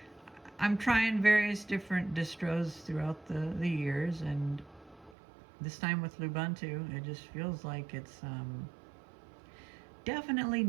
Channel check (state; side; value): drops out; left; at 5.2 s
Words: I'm trying various different distros throughout the years, and this time with Lubuntu, it just feels like it's definitely